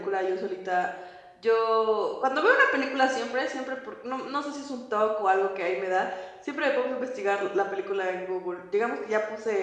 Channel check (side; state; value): both; identical; correlation 1.00